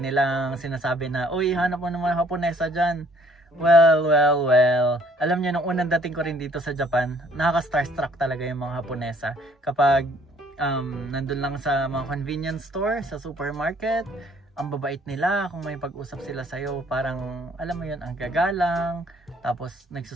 nilang sinasabi na, uy, hanap mo naman Haponesa dyan. Well. Alam niyo, nung unang dating ko rin dito sa Japan, nakaka-starstruck talaga yung mga Haponesa. Kapag nandun lang sa mga convenience store, sa supermarket, ang babait nila. Kung may pag-usap sila sa'yo, parang, alam mo yun, ang gagalang. Tapos,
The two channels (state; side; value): normal; both; correlation 0.60